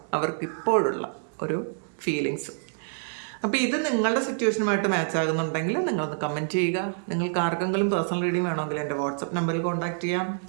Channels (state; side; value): silent; left; digital silence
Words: അവർക്കിപ്പോഴുള്ള ഒരു ഫീലിങ്സും. അപ്പോൾ ഇത് നിങ്ങളുടെ സിറ്റുവേഷനുമായിട്ട് മാച്ച് ആകുന്നുണ്ടെങ്കിൽ നിങ്ങളൊന്ന് കമൻറ്റ് ചെയ്യുക. നിങ്ങൾക്ക് ആർക്കെങ്കിലും പേഴ്സണൽ റീഡിങ് വേണമെങ്കിൽ എൻ്റെ വാട്സപ്പ് നമ്പറിൽ കോൺടാക്റ്റ് ചെയ്യാം.